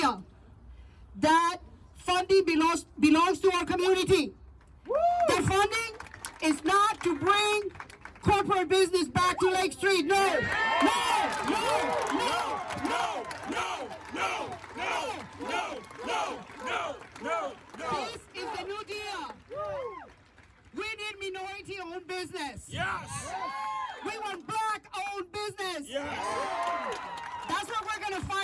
That funding belongs to our community. That funding is not to bring corporate business back to Lake Street. No, no, no, no, no, no, no, no, no, no, no, no, no. This is the New Deal. We need minority-owned business. Yes. We want black-owned business. Yes. That's what we're going to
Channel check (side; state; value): both; identical; correlation 1.00